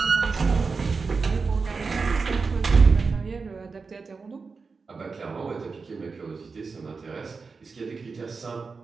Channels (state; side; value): quieter; left; 4.7 dB